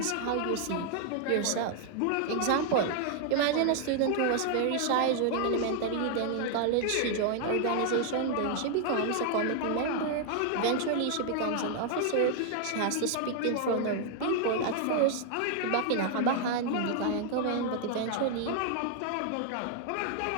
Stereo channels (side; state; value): both; different; correlation 0.00